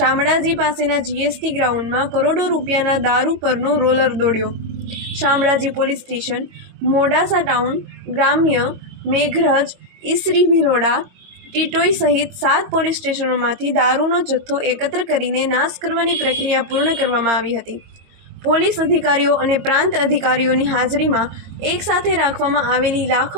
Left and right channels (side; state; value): left; late; 22 ms